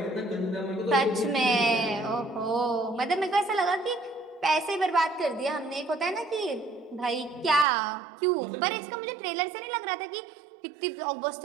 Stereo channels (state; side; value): drops out; left; at 7.7 s